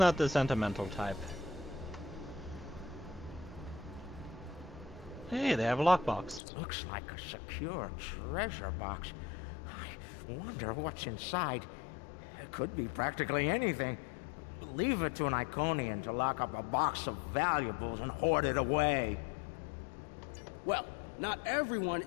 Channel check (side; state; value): right; drops out; at 6.4 s